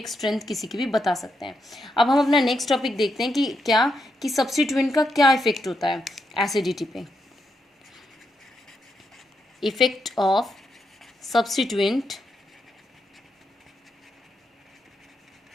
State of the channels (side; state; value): both; normal; correlation 0.82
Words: स्ट्रेंथ किसी की भी बता सकते हैं। अब हम अपना नेक्स्ट टॉपिक देखते हैं कि क्या कि सब्स्टिट्यूएंट का क्या इफेक्ट होता है एसिडिटी पे। Effect of substituent